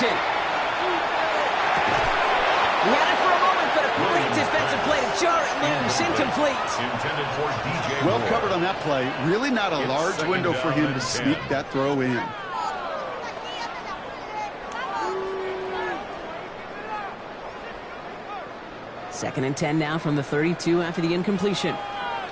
He had it for a moment, but a great defensive play to jar it loose. Incomplete. Intended for DJ Well Moore. covered on that play. Really not a It's large second window for down him and to 10. sneak that throw in. Second and 10 now from the 32 after the incompletion.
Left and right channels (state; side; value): identical; both; correlation 1.00